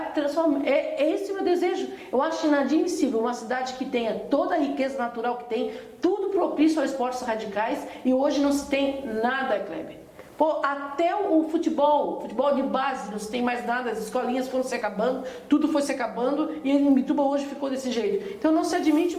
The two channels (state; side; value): identical; both; correlation 1.00